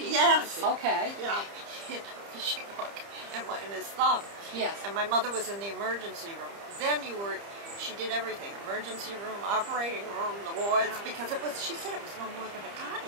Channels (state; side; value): late; left; 30 ms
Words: Okay. Yeah, he had a fishing hook in his thumb. Yes. And my mother was in the emergency room. Then she did everything, emergency room, operating room, the wards, because she said it was no more than a